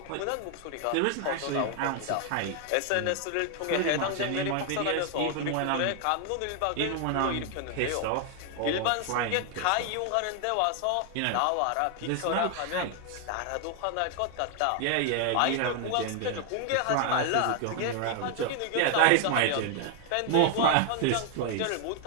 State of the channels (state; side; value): different; both; correlation 0.00